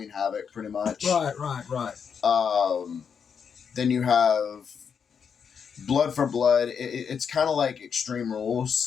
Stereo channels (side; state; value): right; quieter; 6.8 dB